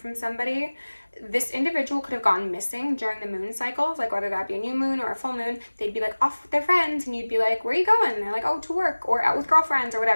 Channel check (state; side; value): inverted; both; correlation -1.00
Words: somebody, this individual could have gone missing during the moon cycles, like whether that be a new moon or a full moon. They'd be like off with their friends, and you'd be like, where are you going? And they're like, oh, to work, or out with girlfriends or